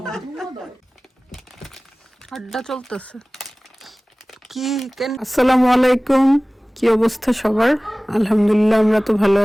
আড্ডা চলতেছে কি আসসালামু আলাইকুম, কি অবস্থা সবার? আলহামদুলিল্লাহ আমরা তো ভালো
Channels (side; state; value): both; normal; correlation 0.98